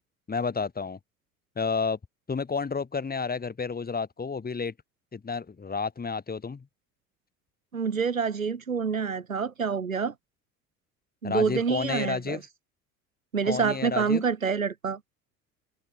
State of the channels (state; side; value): normal; both; correlation 0.17